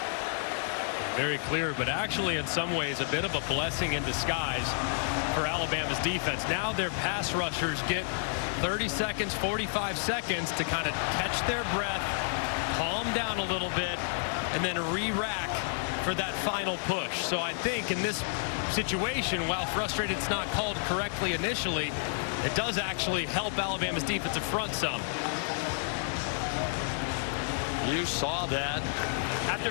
Very clear, but actually in some ways a bit of a blessing in disguise for Alabama's defense. Now their pass rushers get 30 seconds, 45 seconds to kind of catch their breath, calm down a little bit, and then re-rack for that final push. So I think in this situation, while frustrated it's not called correctly initially, it does actually help Alabama's defensive front some. You saw that. After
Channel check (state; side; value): silent; right; digital silence